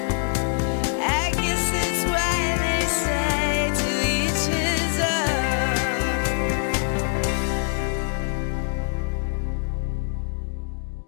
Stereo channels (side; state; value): right; silent; 58 dB below the other